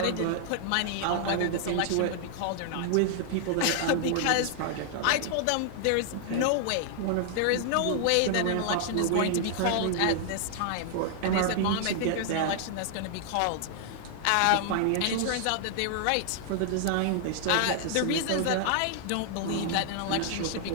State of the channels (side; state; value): both; different; correlation 0.00